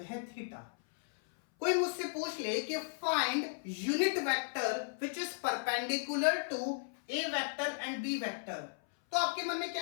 है थीटा। कोई मुझसे पूछ ले कि find unit vector which is perpendicular to A vector and B vector, तो आपके मन में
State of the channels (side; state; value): right; silent; 54 dB below the other